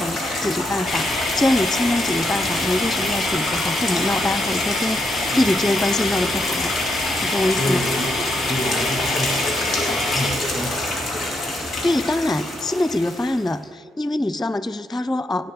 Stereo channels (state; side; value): normal; both; correlation 0.80